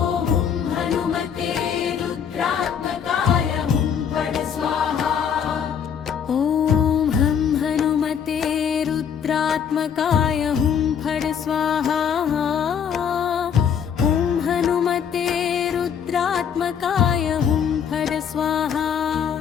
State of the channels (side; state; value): right; quieter; 7.8 dB